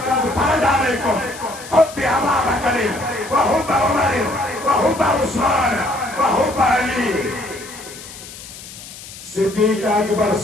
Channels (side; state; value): left; noise; hiss, 15 dB below the sound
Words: قد فرض علیکم حب ابا بکر وحب عمر وحب عثمان وحب علی صدیق اکبر